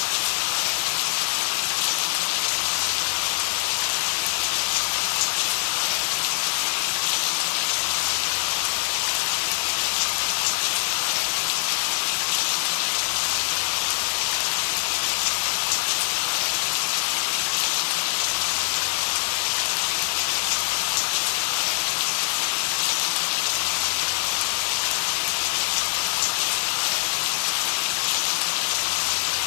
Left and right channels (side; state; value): right; silent; 57 dB below the other